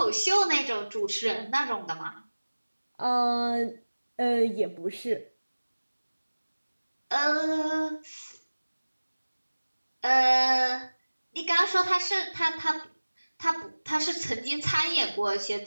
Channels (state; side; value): inverted; both; correlation -1.00